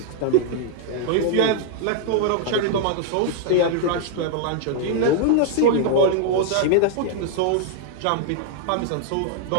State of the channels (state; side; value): different; both; correlation -0.01